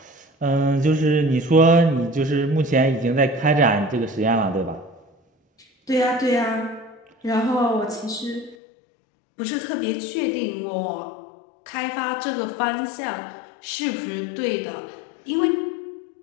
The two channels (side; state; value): right; drops out; at 8.6 s